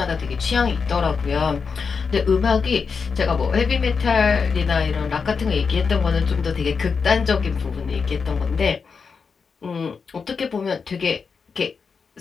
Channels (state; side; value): quieter; right; 5.5 dB